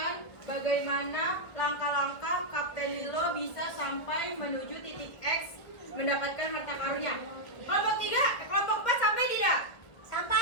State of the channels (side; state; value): right; late; 1.4 ms